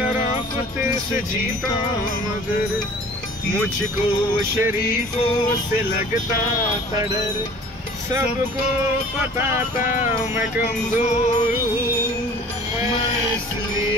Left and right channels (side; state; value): both; normal; correlation 0.47